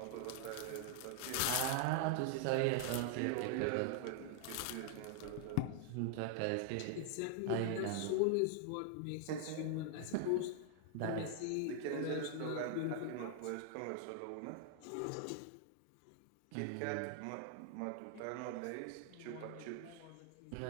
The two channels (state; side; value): different; both; correlation 0.00